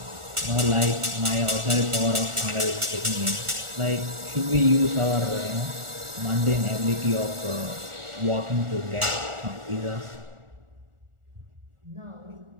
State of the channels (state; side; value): late; left; 1.4 ms